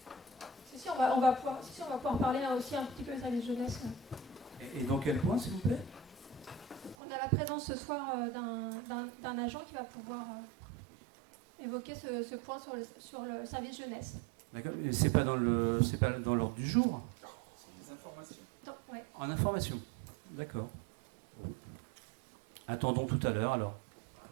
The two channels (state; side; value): drops out; left; at 7.0 s